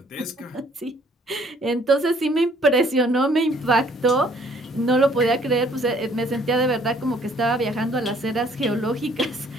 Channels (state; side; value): normal; both; correlation 0.61